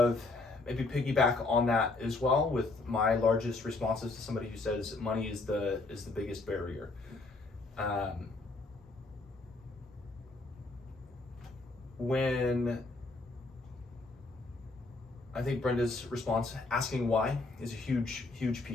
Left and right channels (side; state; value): right; quieter; 3.4 dB